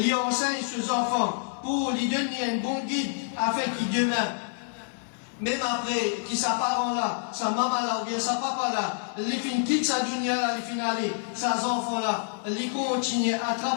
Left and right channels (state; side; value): silent; right; 60 dB below the other